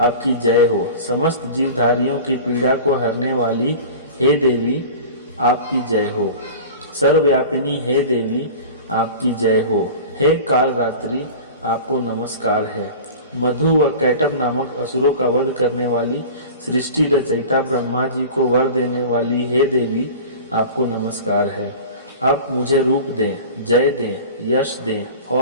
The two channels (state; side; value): inverted; both; correlation -0.36